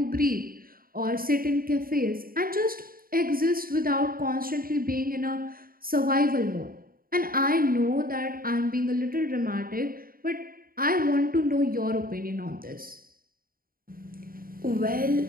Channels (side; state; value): left; late; 0.42 ms